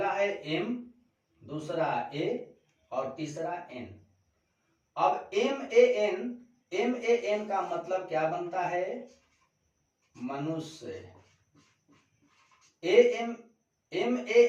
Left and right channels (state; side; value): identical; both; correlation 1.00